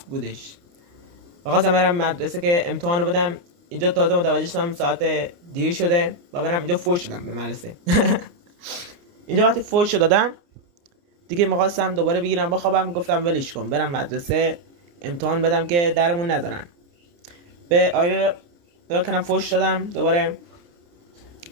بودش و خواستم برم مدرسه که امتحانو بدم. اینجا تازه متوجه شدم ساعت دیر شده و برم اینجا فوش شدم به مدرسه. اینجا وقتی فوش دادم دیگه می‌خواستم دوباره بگیرم بخوابم، گفتم ولش کن برم مدرسه امتحان بدم که درمون نذارن. به آینه نگاه کردم، فوش دادم دوباره.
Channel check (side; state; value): left; late; 29 ms